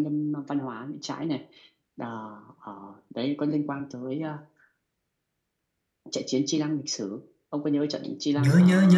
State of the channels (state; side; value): identical; both; correlation 1.00